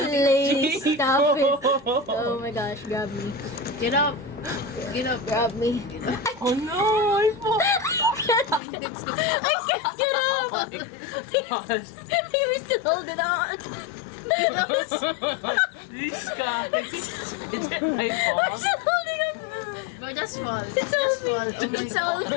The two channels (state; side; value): drops out; right; at 8.6 s